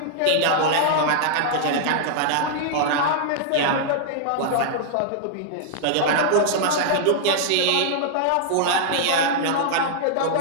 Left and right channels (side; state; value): both; different; correlation -0.01